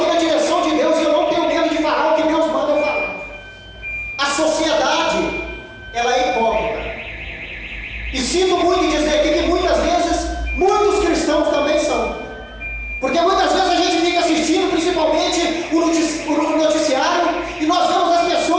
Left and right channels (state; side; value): identical; both; correlation 1.00